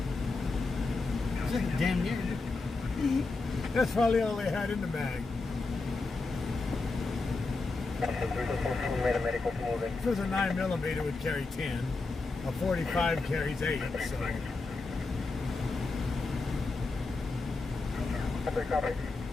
It's like damn near. That's probably all they had in the mag. If it was a 9mm, it would carry 10. A 45 carries 8, so.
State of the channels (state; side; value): quieter; right; 3.7 dB